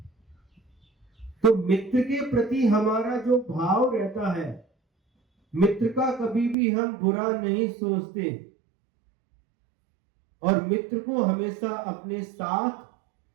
तो मित्र के प्रति हमारा जो भाव रहता है, मित्र का कभी भी हम बुरा नहीं सोचते और मित्र को हमेशा अपने साथ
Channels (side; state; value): left; drops out; at 6.6 s